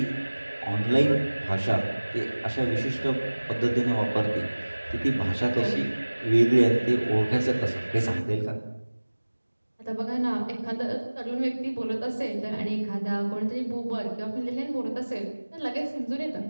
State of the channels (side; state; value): both; inverted; correlation -1.00